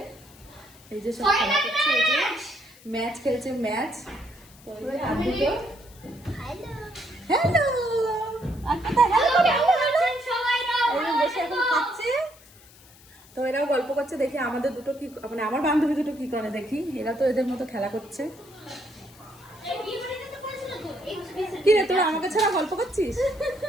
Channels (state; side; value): noise; left; hiss, 24 dB below the sound